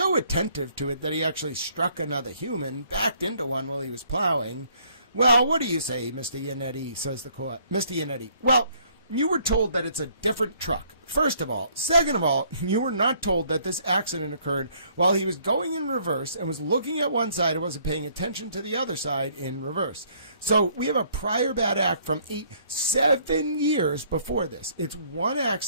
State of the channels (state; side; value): inverted; both; correlation -0.64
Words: attentive to it that he actually struck another human, backed into one while he was plowing, well, what do you say, Mr. Yanedi, says the court. Mr. Yanedi, well, you were told that it's a different truck, first of all. Second of all, you were not told that this accident occurred while he was going in reverse and was looking at one side and wasn't paying attention to the other side in reverse. So we have a prior bad act from 7 years before this. It's one